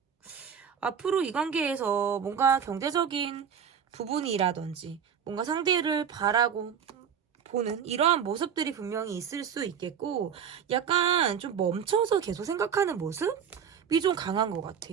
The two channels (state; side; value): quieter; left; 7.7 dB